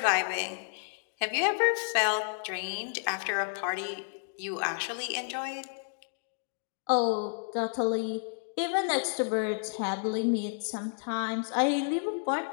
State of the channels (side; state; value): right; silent; 57 dB below the other